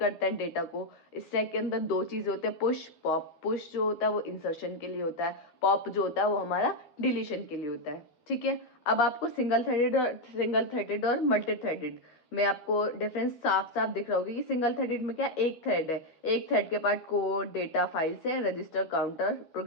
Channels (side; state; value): right; late; 12 ms